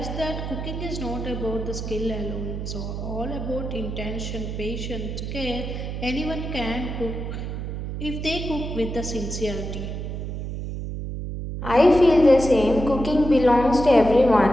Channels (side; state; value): right; noise; hum, 5 dB below the sound